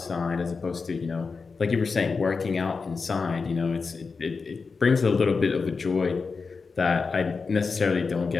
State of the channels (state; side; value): quieter; right; 4.7 dB